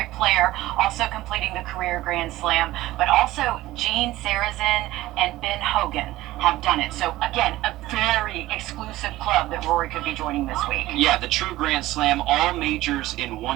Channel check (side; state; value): left; quieter; 16.8 dB